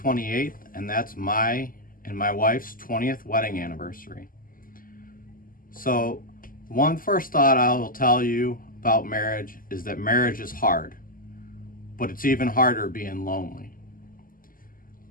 and that's my and my wife's 20th wedding anniversary. So, one first thought I will tell you about marriage is that marriage is hard, but it's even harder being lonely.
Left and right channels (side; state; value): right; late; 0.41 ms